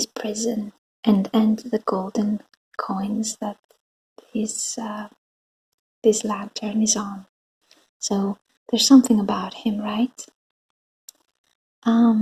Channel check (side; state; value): both; identical; correlation 1.00